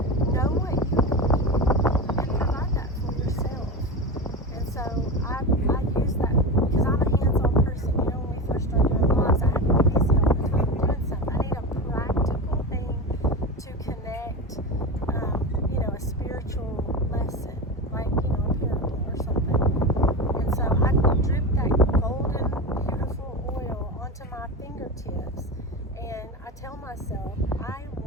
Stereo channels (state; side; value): normal; both; correlation 0.23